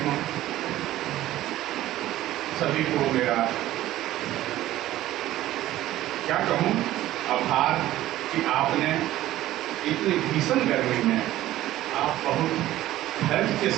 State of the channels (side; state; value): left; quieter; 14.6 dB